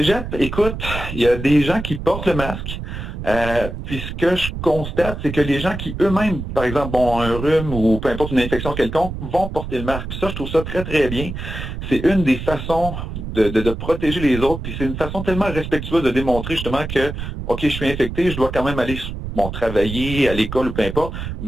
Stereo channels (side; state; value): right; noise; rumble, 7 dB below the sound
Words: écoute, il y a des gens qui portent le masque. Puis ce que je constate, c'est que les gens qui eux-mêmes, par exemple, ont un rhume ou peu importe une infection quelconque, vont porter le masque. Puis ça, je trouve ça très, très bien. C'est une des façons de protéger les autres. Puis c'est une façon tellement respectueuse de démontrer justement que, OK, je suis infecté, je dois quand même aller travailler à l'école ou peu importe,